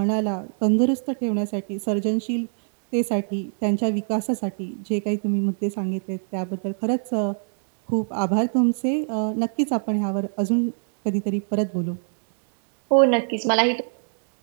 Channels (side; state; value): left; silent; 63 dB below the other